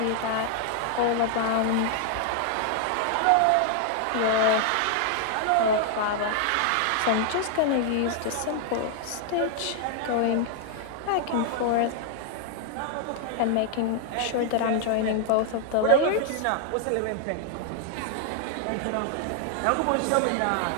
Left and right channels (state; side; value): different; both; correlation 0.00